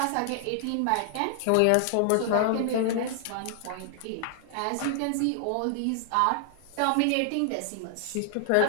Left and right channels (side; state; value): both; different; correlation 0.00